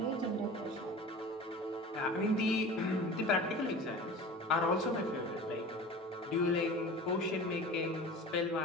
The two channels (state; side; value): normal; both; correlation 0.37